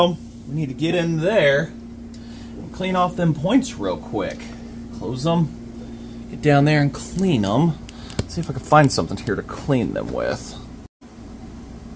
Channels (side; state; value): both; identical; correlation 1.00